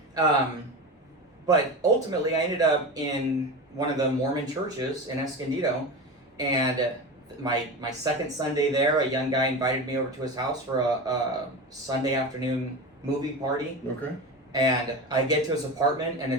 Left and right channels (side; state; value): both; normal; correlation 0.25